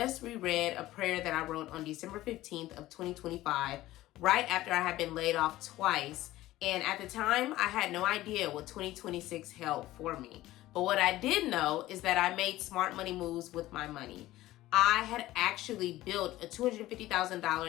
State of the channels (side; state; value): right; quieter; 16.2 dB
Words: reread a prayer that I wrote on December 15th of 2025, right after I had been laid off twice. And at the time, I had no idea what 2026 held for me. But what I did know is that I made smart money moves with my money. I had actually built a